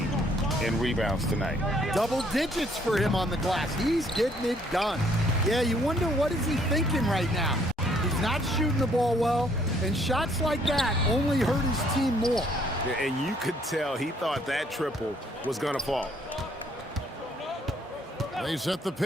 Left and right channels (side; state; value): both; normal; correlation 0.65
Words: in rebounds tonight. Double digits for him on the glass. He's getting it done. Yeah, you wonder what is he thinking right now. He's not shooting the ball well, and shots like that only hurt his team more. And you could tell he thought that triple was going to fall. They set the